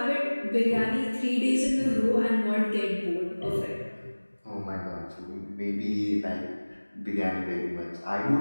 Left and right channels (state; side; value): inverted; both; correlation -1.00